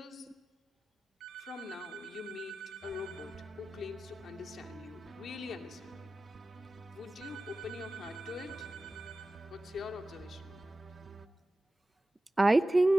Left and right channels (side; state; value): both; normal; correlation 0.95